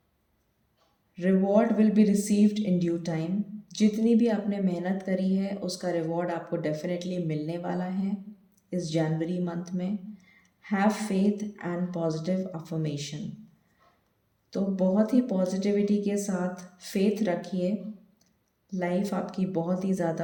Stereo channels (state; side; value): identical; both; correlation 1.00